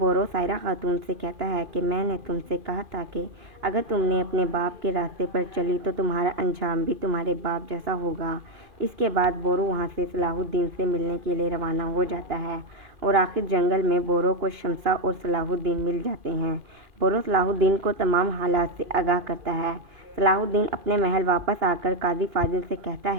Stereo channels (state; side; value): late; left; 2.5 ms